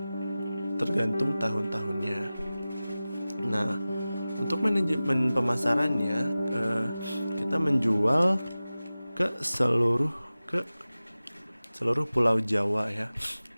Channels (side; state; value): both; inverted; correlation -0.97